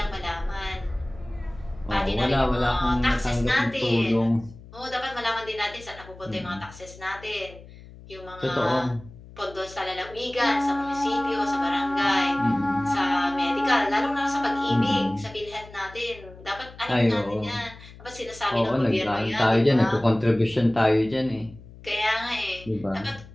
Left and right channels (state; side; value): noise; left; hum, 19 dB below the sound